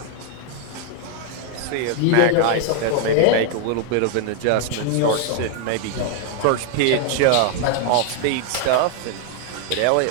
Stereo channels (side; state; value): both; different; correlation 0.00